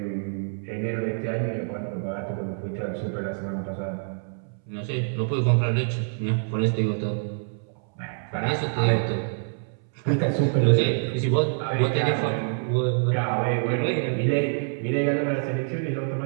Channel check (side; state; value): left; silent; 61 dB below the other